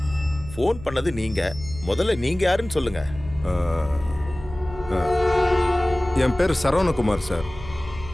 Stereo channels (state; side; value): noise; right; hum, 15 dB below the sound